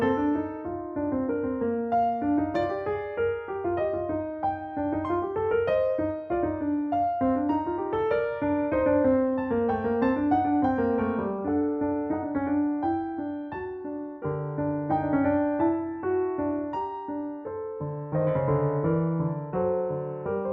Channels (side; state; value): both; identical; correlation 1.00